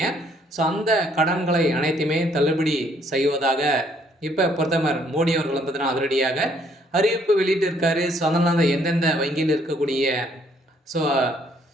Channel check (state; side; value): normal; both; correlation 0.66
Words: ஸோ அந்த கடன்களை அனைத்துமே தள்ளுபடி செய்வதாக இப்ப பிரதமர் மோடி அவர்கள் வந்து பார்த்தீங்கன்னா, அதிரடியாக அறிவிப்பு வெளியிட்டிருக்காரு. ஸோ அதனால எந்தெந்த வங்கியில் இருக்கக்கூடிய ஸோ